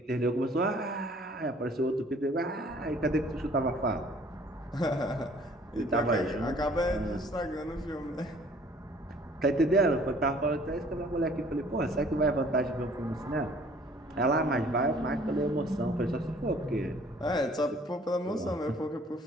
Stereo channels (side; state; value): both; normal; correlation 0.55